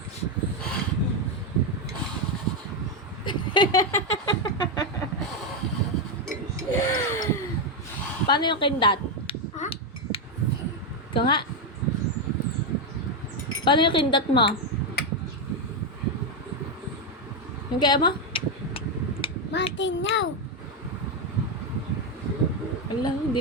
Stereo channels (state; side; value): normal; both; correlation 0.05